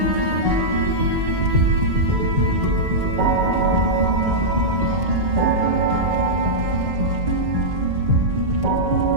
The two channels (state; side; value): late; left; 5.3 ms